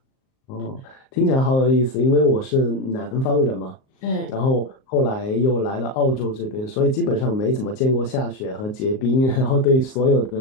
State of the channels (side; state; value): right; late; 38 ms